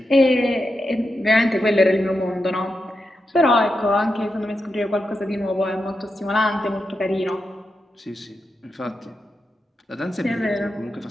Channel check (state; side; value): normal; both; correlation 0.87